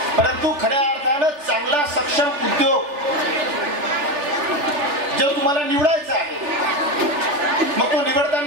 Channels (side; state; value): left; late; 3.4 ms